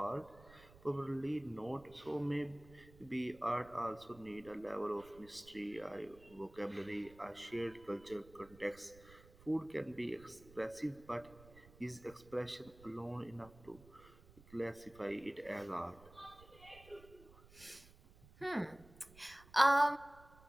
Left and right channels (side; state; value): right; noise; rumble, 22 dB below the sound